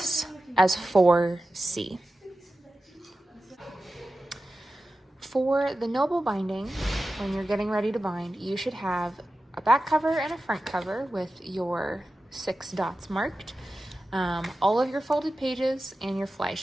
as 4C. For the noble binding, when you're getting ready to bind, you should have a back cover and a front cover with your 6 dots marked, all of your folded pages, and your fly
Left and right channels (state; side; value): normal; both; correlation 0.94